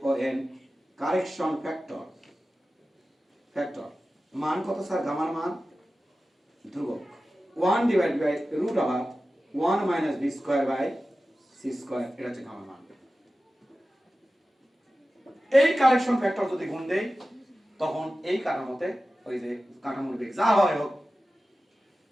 O N, correction factor. Factor মান কত স্যার? গামার মান ধ্রুবক 1 divide by root over 1 minus b square by c square, এটা হচ্ছে গামার মান। এই কারেকশন ফ্যাক্টর যদি গুণ দেই তখন এই কাঠামোতে ওই যে কাঠামোর বেগ যা হয় হোক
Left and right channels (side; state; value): both; normal; correlation 0.95